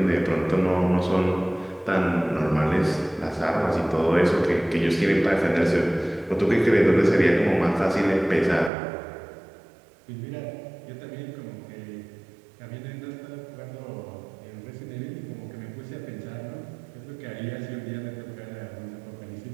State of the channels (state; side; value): drops out; left; at 8.7 s